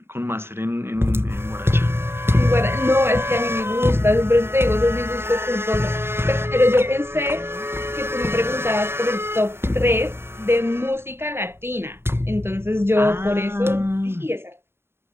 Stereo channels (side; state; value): left; late; 0.12 ms